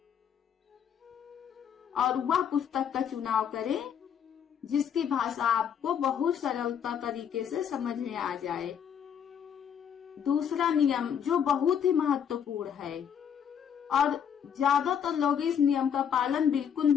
और वह पुस्तक का चुनाव करें जिसकी भाषा आपको बहुत सरलता तरीके से समझ में आ जाए। दूसरा नियम जो बहुत ही महत्वपूर्ण है और ज्यादातर लोग इस नियम का पालन बिल्कुल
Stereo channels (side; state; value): right; quieter; 8.2 dB